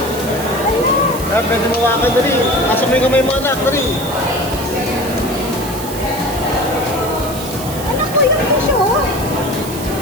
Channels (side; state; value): right; noise; hiss, 11 dB below the sound